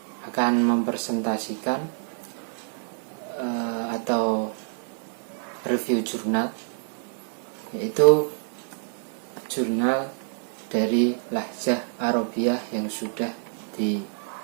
akan mempresentasikan atau review jurnal, yaitu jurnal dari Lahjah Arabiyah yang sudah ditampilkan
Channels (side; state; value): left; silent; 60 dB below the other